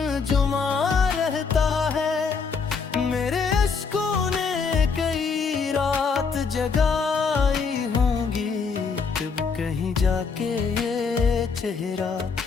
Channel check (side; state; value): right; quieter; 5.3 dB